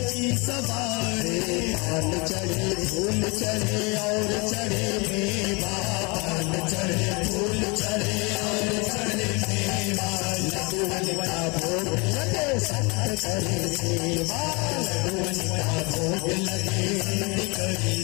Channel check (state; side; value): quieter; right; 29.2 dB